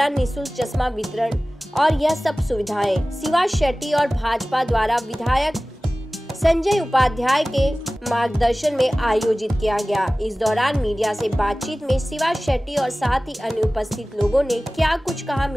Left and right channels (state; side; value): normal; both; correlation 0.97